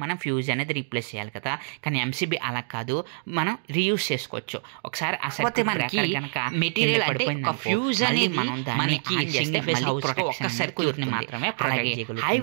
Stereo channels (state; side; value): silent; left; digital silence